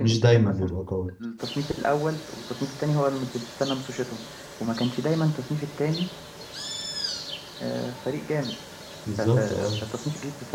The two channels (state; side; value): identical; both; correlation 1.00